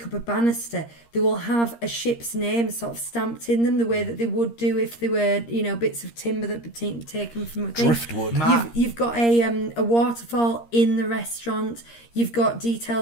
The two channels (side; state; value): right; late; 13 ms